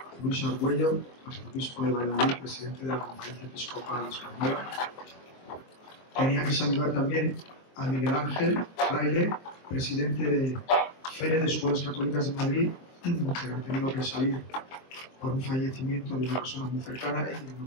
Luis Argüello, arzobispo de Valladolid, presidente de la Conferencia Episcopal Española. Tenía que saludar también a Miguel Ángel Fraile, presidente de FERE de Escuelas Católicas de Madrid, que ha tenido que salir por un fallecimiento de una persona muy cercana y no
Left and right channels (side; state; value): right; late; 23 ms